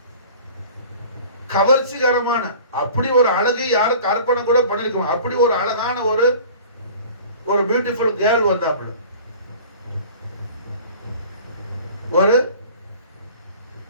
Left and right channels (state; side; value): inverted; both; correlation -0.44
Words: கவர்ச்சிகரமான அப்படி ஒரு அழகை யாரும் கற்பனை கூட பண்ணிருக்கோம். அப்படி ஒரு அழகான ஒரு பியூட்டிஃபுல் கேர்ள் வந்தாப்புல, ஒரு